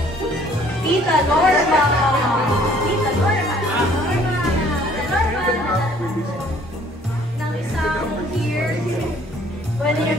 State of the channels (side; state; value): both; normal; correlation 0.58